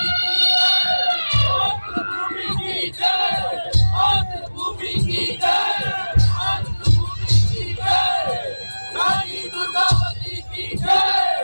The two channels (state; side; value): inverted; both; correlation -1.00